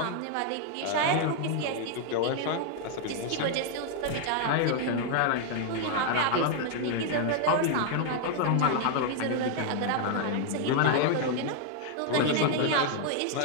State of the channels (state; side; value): different; both; correlation 0.00